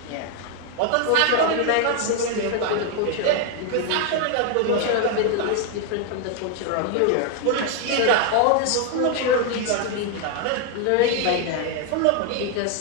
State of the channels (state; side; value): different; both; correlation 0.01